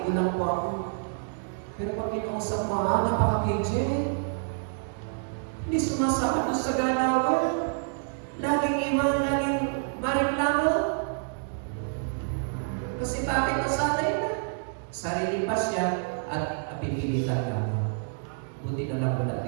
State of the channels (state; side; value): silent; left; digital silence